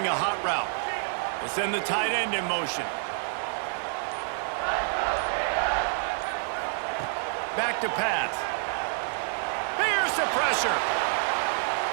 a hot route. We'll send the tight end in motion. Back to pass. Bears the pressure.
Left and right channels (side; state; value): left; silent; 59 dB below the other